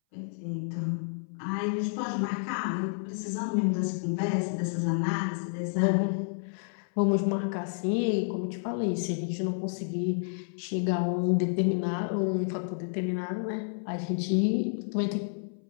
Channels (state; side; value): silent; right; 58 dB below the other